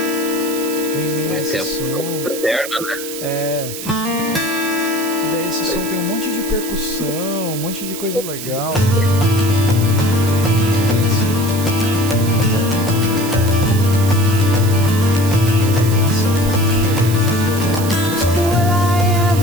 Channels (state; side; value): noise; right; hiss, 9 dB below the sound